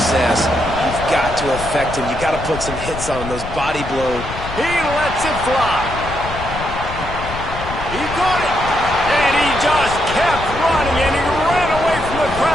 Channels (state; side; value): noise; left; rumble, 9 dB below the sound